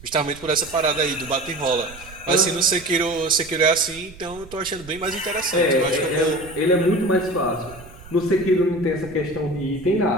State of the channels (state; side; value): noise; right; rumble, 19 dB below the sound